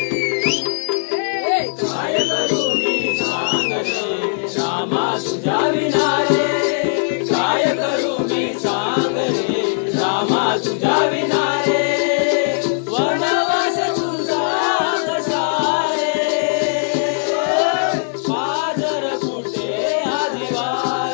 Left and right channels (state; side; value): silent; right; digital silence